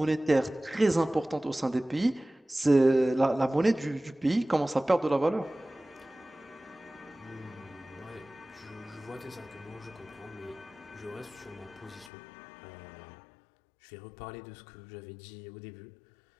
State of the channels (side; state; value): right; drops out; at 12.1 s